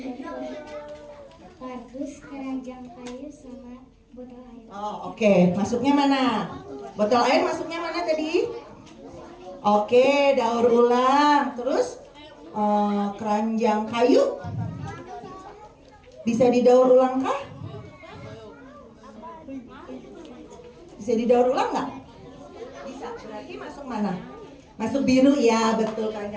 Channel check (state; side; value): identical; both; correlation 1.00